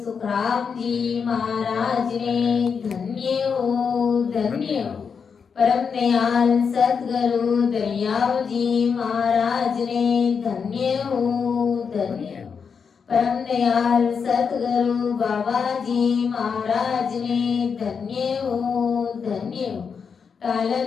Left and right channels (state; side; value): quieter; right; 6.1 dB